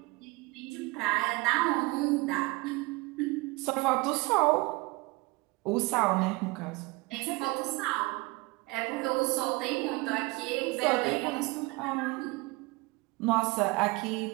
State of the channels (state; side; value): quieter; left; 24.1 dB